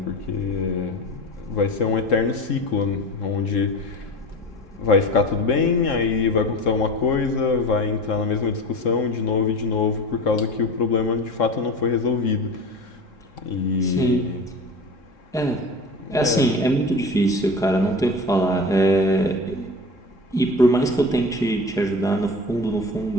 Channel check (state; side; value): normal; both; correlation 0.32